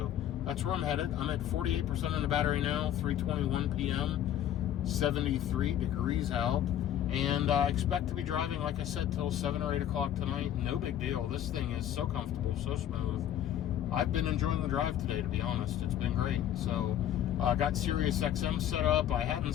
that's where I'm headed. I'm at 48% in the battery now, 3:21 p.m., 73 degrees out. And I expect to be driving, like I said, till 7 or 8 o'clock tonight. No big deal. This thing is so comfortable, so smooth. I've been enjoying the drive today, to be honest. It's been great. So I got Sirius XM set up. I hadn't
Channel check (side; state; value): right; quieter; 11.0 dB